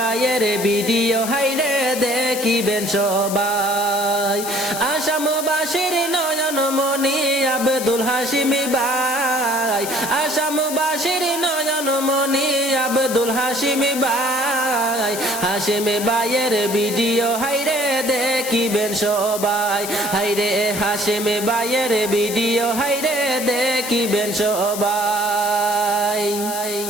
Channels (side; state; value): left; noise; hiss, 7 dB below the sound